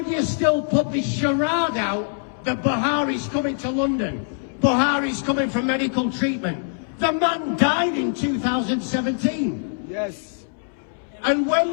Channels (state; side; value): silent; right; 63 dB below the other